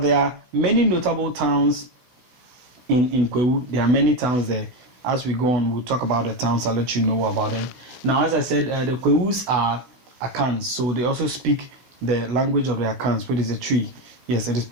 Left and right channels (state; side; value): late; left; 16 ms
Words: are many notable towns in Kwahu. There are many towns there. As we go on, we'll talk about the towns. I'll let you know about them. Now, as I said, the Kwahus are Akans, so they also speak the language of the Akans, which is a Twi. Yes, it is